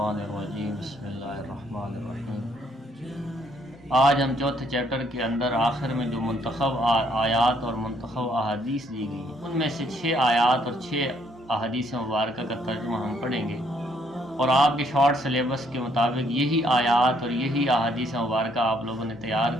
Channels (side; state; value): both; normal; correlation 0.68